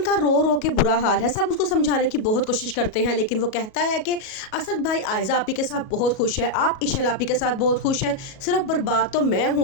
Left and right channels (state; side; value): late; right; 37 ms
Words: का रो रो के बुरा हाल है। सब उसको समझाने की बहुत कोशिश करते हैं, लेकिन वो कहता है कि असद भाई आयजा आपी के साथ बहुत खुश है, आप इशल आपी के साथ बहुत खुश है, सिर्फ बर्बाद तो मैं